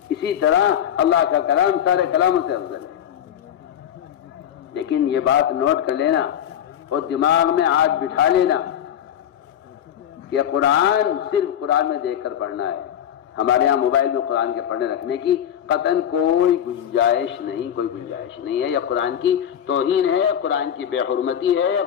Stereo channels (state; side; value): quieter; right; 9.9 dB